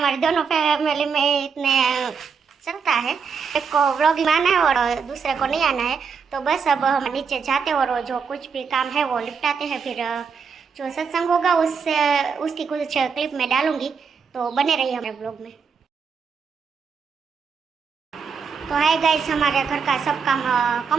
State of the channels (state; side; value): quieter; left; 5.9 dB